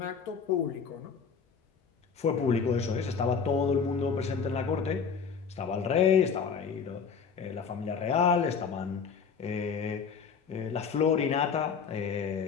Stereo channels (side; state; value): right; quieter; 6.1 dB